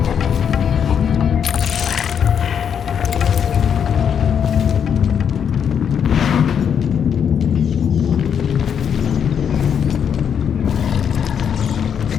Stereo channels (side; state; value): right; quieter; 7.8 dB